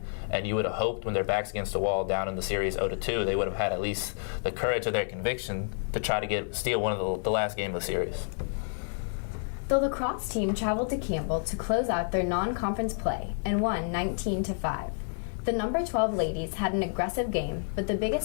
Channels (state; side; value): silent; right; 56 dB below the other